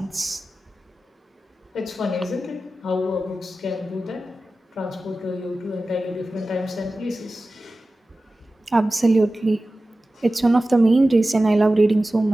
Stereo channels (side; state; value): both; normal; correlation 0.95